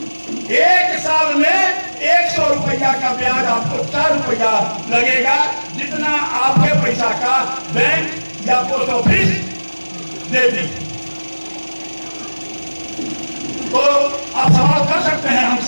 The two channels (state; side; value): inverted; both; correlation -1.00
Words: 1 साल में 100 रुपया का ब्याज आपको 4 रुपया लगेगा, जितना आपके पैसा का बैंक या पोस्ट ऑफिस दे दी। तो आप सवाल कर सकते हैं